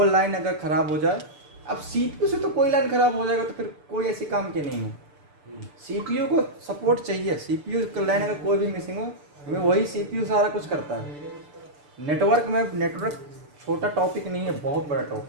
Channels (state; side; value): late; left; 6.8 ms